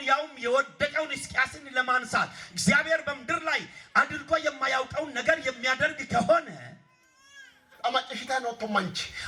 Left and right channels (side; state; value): both; identical; correlation 1.00